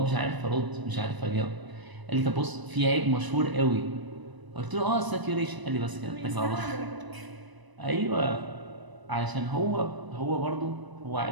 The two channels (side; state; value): left; late; 1.0 ms